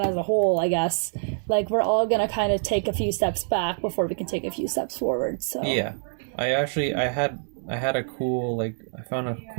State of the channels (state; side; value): silent; left; digital silence